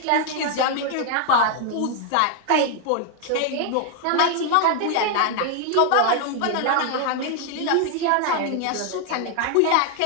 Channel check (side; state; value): both; different; correlation 0.00